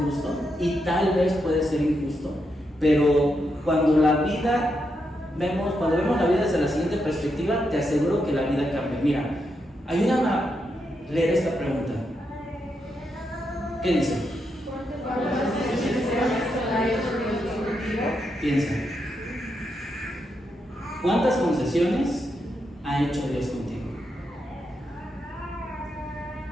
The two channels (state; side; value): normal; both; correlation 0.83